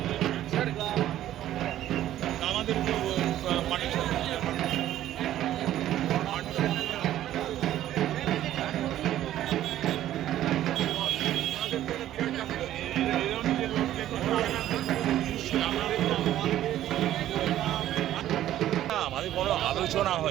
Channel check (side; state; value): left; quieter; 12.7 dB